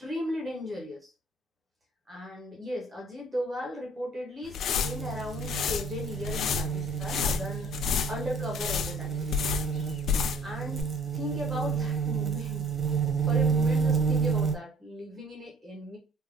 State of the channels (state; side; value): normal; both; correlation 0.53